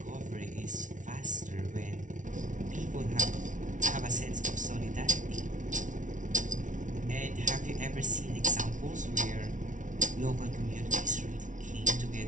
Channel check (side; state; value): left; late; 0.37 ms